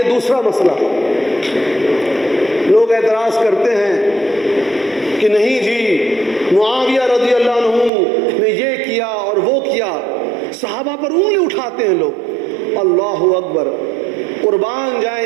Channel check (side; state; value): left; drops out; at 7.9 s